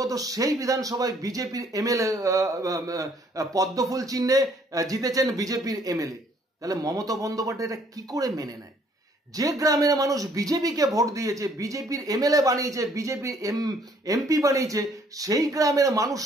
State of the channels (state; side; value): normal; both; correlation 0.63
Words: সেই বিধানসভায় বিজেপির এমএলএ পদ্মফুল চিহ্নে জিতেছেন বিজেপির এমএলএ, তাহলে মমতা বন্দ্যোপাধ্যায় এটা কি করে মেনে নেয়? যে গ্রামের মানুষ বিজেপিকে ভোট দিয়েছে, বিজেপির এমএলএ বানিয়েছে, বিজেপির এমপি বানিয়েছে, সেই গ্রামের